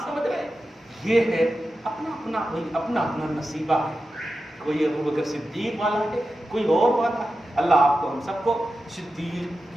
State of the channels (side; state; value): both; normal; correlation 0.92